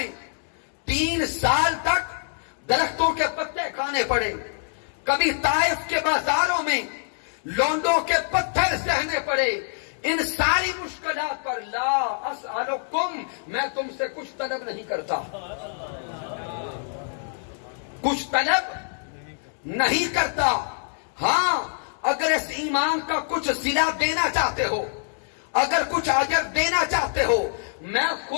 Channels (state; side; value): silent; right; digital silence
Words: 3 سال تک درختوں کے پتے کھانے پڑے، کبھی طائف کے بازاروں میں لونڈوں کے پتھر سہنے پڑے، ان ساری مشکلات پر لا اسألکم، میں تم سے کچھ طلب نہیں کرتا، کچھ طلب نہیں کرتا۔ ہاں اگر اس ایمان کا کچھ صلہ دینا چاہتے ہو، اگر کچھ اجر دینا چاہتے ہو، میں